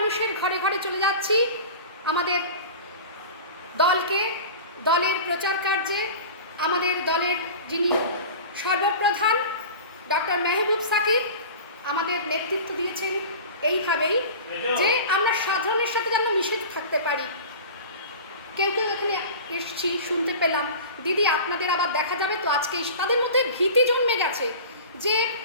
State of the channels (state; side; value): inverted; both; correlation -0.36